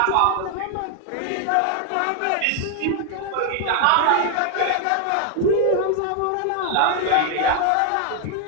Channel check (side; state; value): both; different; correlation 0.00